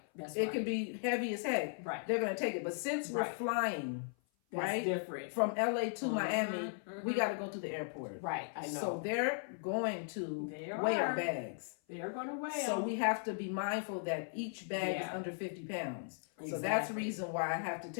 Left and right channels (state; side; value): silent; right; 53 dB below the other